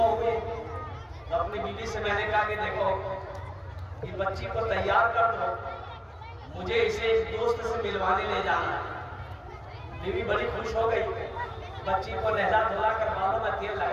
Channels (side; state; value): both; identical; correlation 1.00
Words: ہوئی تو اپنی بیوی سے میں نے کہا کہ دیکھو یہ بچی کو تیار کر دو، مجھے اسے ایک دوست سے ملوانے لے جانا ہے۔ بیوی بڑی خوش ہو گئی، بچی کو نہلا دھلا کر بالوں میں تیل